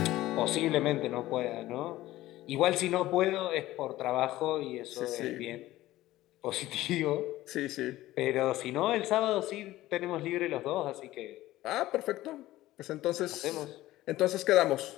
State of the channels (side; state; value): right; quieter; 16.1 dB